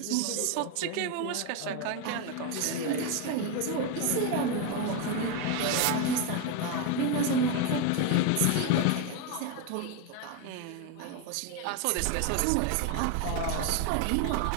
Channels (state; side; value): different; both; correlation 0.02